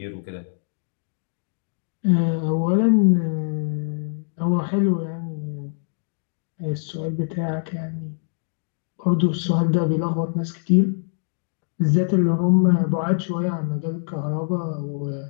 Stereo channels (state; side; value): silent; right; digital silence